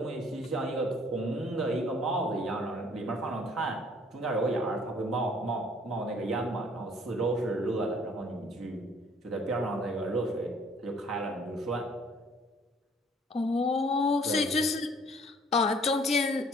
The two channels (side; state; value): both; normal; correlation 0.58